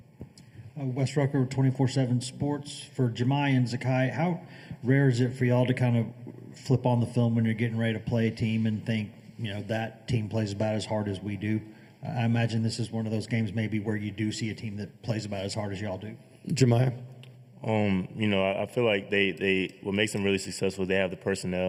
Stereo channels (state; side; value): identical; both; correlation 1.00